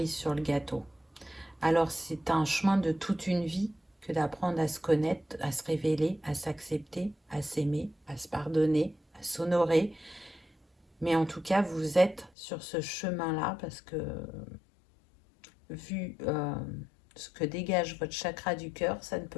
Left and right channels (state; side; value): drops out; right; at 12.3 s